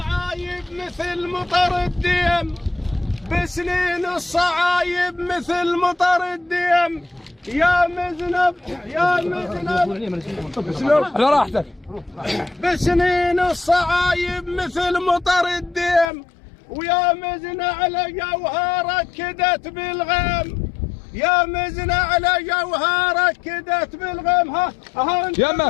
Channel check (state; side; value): drops out; right; at 16.1 s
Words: مثل مطر الديم بسنين الصعايب مثل مطر الديم يا مذنب يا مذنب على راحتك بسنين الصعايب مثل مطر الديم ويا مزن على جوهرك كدت بالغيم يا مزن على جوهرك كدت بالغيم ها انت